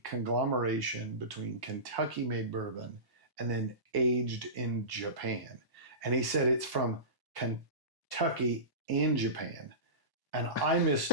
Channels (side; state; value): left; late; 1.1 ms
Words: conglomeration between Kentucky-made bourbon and then aged in Japan. And he said it's from Kentucky and Japan. And I